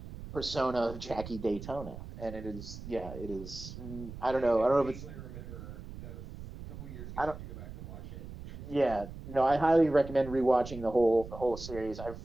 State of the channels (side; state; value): right; noise; rumble, 12 dB below the sound